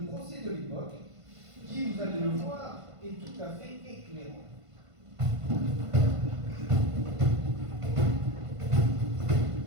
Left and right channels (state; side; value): late; left; 1.5 ms